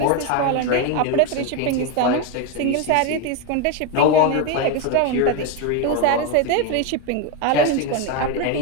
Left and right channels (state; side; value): different; both; correlation 0.02